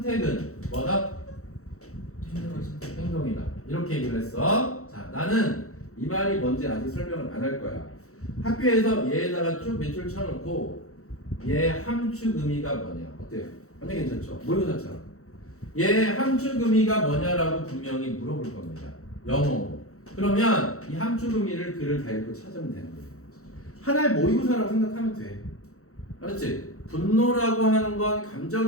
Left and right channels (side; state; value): right; late; 0.64 ms